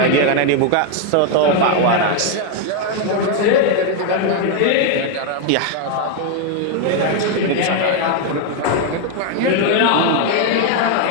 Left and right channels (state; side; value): different; both; correlation 0.01